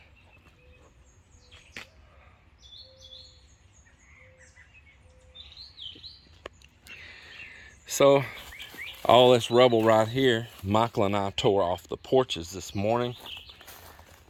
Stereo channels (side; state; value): both; identical; correlation 1.00